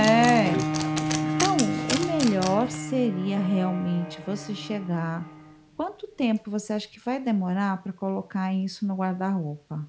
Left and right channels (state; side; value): identical; both; correlation 1.00